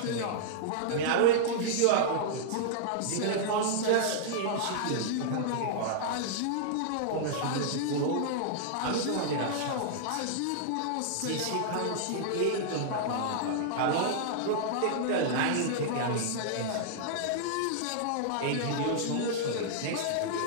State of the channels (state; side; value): different; both; correlation -0.01